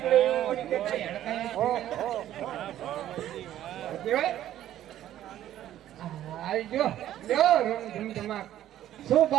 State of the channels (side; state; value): left; quieter; 12.4 dB